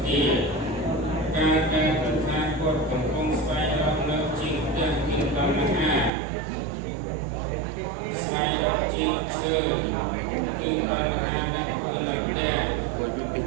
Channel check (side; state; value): left; drops out; at 6.1 s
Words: ទាការប្រថាពុទ្ធកំពុងស្វែងរកនៅជាងផ្ទះមានតណ្ហាស្វែងរកជាងឈើគឺតណ្ហាដែលគឺនៅផ្ទះ